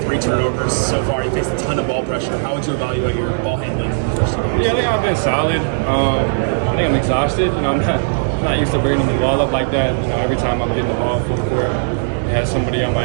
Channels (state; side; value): silent; left; 60 dB below the other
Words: turnovers so far. You faced a ton of ball pressure. How would you evaluate your ball handling in the first 2 games? Yeah, I think I've been solid. I think I'm exhausted. I'm not used to bringing the ball up like that. Every time I'm getting the ball full court, it has somebody on